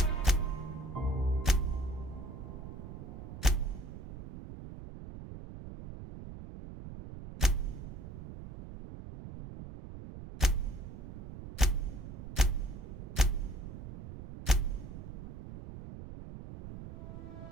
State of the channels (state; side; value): noise; right; rumble, 11 dB below the sound